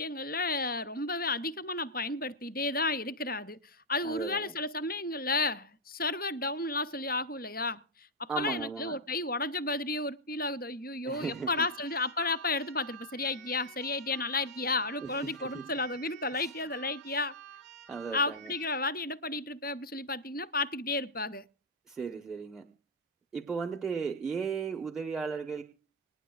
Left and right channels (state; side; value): normal; both; correlation -0.04